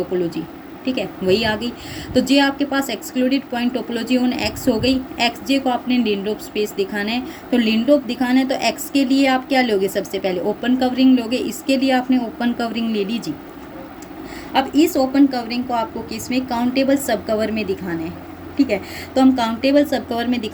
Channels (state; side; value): identical; both; correlation 1.00